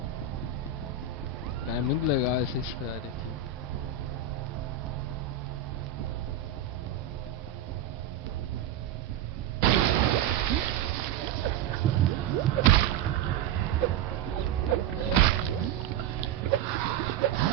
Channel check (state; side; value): quieter; left; 8.2 dB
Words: É muito legal essa história aqui.